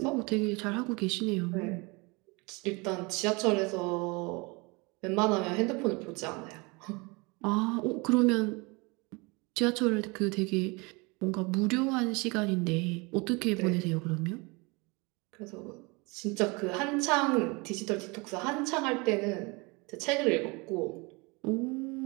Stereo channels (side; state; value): left; quieter; 27.4 dB